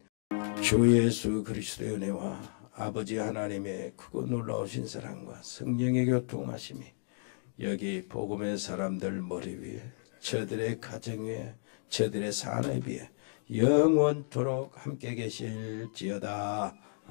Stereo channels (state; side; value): silent; right; digital silence